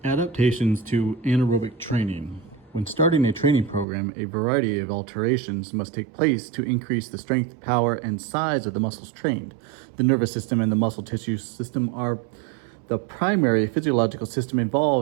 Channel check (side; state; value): left; drops out; at 3.9 s